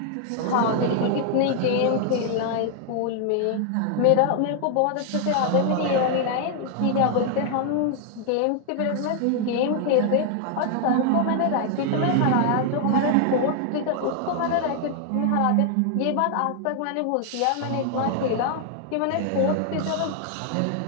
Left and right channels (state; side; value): different; both; correlation 0.00